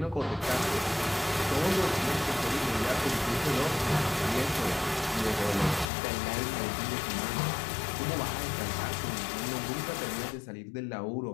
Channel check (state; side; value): drops out; right; at 5.9 s